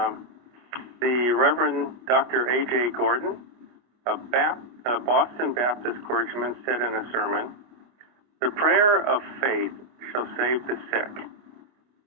The Reverend Dr. A.J. Gordon, a Boston Baptist clergyman, said in a sermon, "The prayer of faith shall save the sick,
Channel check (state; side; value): late; left; 25 ms